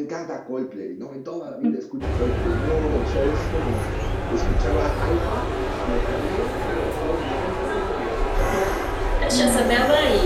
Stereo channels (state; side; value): identical; both; correlation 1.00